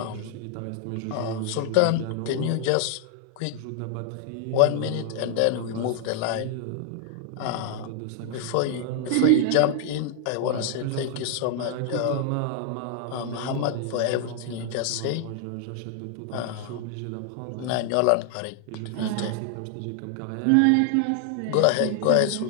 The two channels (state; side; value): different; both; correlation 0.00